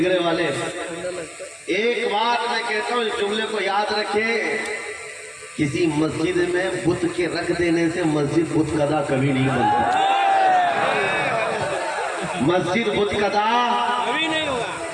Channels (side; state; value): both; identical; correlation 1.00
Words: والے ہیں۔ ایک بات میں کہتا ہوں، اس جملے کو یاد رکھیں، کسی مسجد میں بت کے رکھ دینے سے مسجد بت قدا کبھی نہیں بنتا۔ مسجد بت قدا کبھی نہیں ہوگا۔